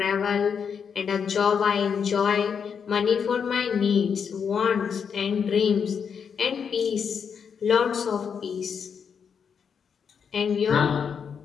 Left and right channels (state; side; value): quieter; right; 6.8 dB